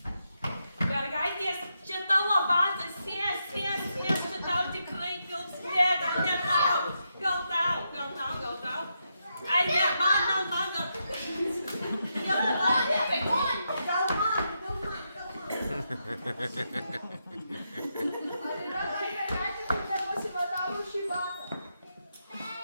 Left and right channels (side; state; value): both; inverted; correlation -0.83